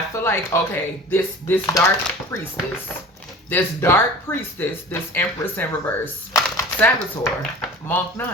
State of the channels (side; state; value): both; normal; correlation 0.40